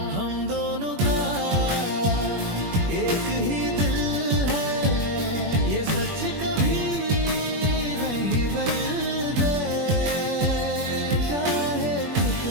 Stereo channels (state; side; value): late; left; 21 ms